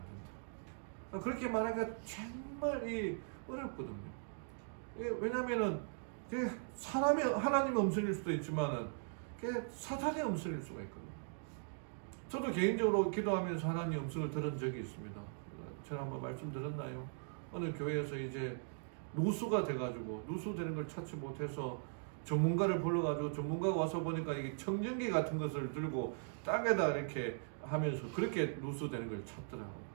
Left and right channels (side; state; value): left; silent; digital silence